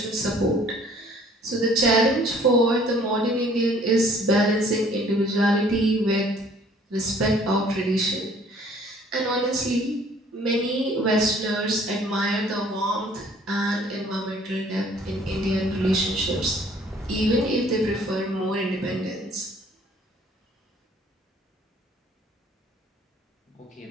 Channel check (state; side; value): normal; both; correlation 0.56